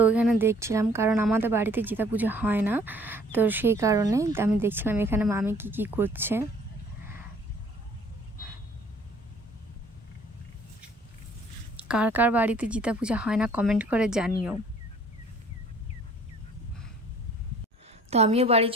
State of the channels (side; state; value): both; normal; correlation 0.55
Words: এখানে দেখছিলাম, কারণ আমাদের বাড়িতে জিতা পূজা হয় না, তো সেই কারণে আমি দেখছিলাম এখানে মামি কি করছে। কার কার বাড়িতে জিতা পূজা হয় না কমেন্ট করে জানিও। তো আমিও বাড়ি